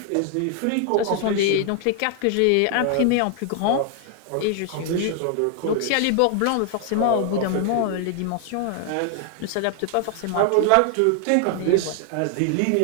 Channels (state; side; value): different; both; correlation 0.00